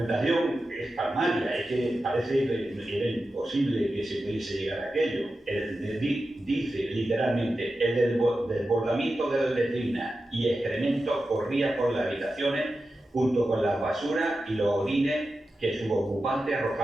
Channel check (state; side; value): normal; both; correlation 0.92